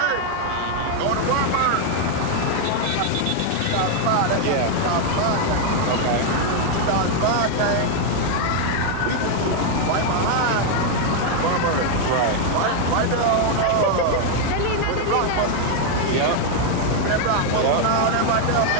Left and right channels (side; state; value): both; different; correlation 0.01